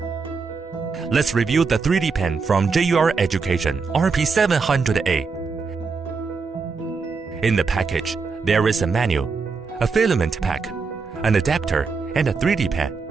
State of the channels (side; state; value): left; quieter; 4.8 dB